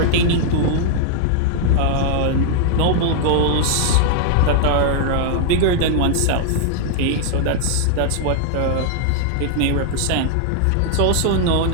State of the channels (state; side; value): different; both; correlation -0.01